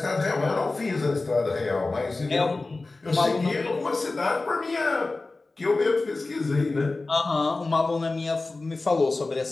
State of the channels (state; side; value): quieter; right; 3.4 dB